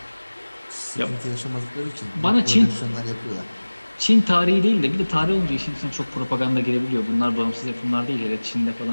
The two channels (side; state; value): both; inverted; correlation -1.00